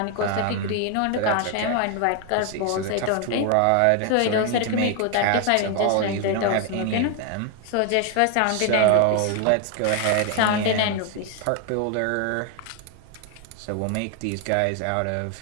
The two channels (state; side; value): different; both; correlation 0.01